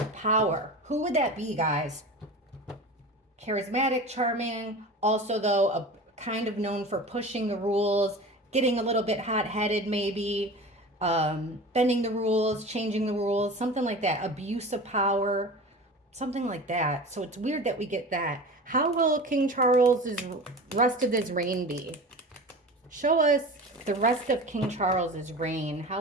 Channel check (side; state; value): both; normal; correlation 0.34